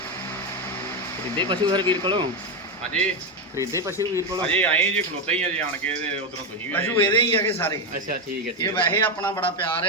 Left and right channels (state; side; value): normal; both; correlation 0.10